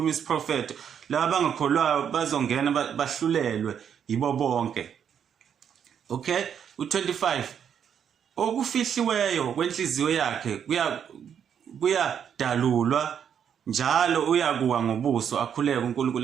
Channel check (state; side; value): quieter; left; 8.2 dB